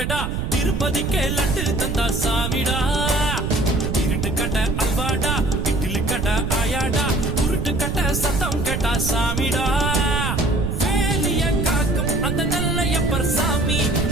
திருப்பதிக்கே லட்டு தந்தா சாமிடா இருட்டு கட்ட அல்வாடா இட்லி கட்ட ஆயாடா உருட்டு கட்ட சத்தம் கேட்டா சாமிடா வேலிய காக்கும் அந்த நல்லையப்பர் சாமி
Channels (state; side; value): noise; right; rumble, 2 dB below the sound